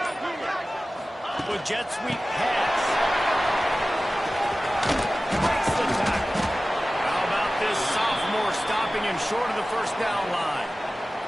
With jet sweep pass. Breaks the tackle. How about this sophomore stopping him short of the first down line?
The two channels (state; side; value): normal; both; correlation 0.96